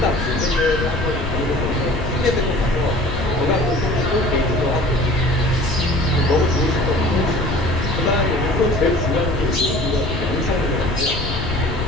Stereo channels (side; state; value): left; noise; rumble, 6 dB below the sound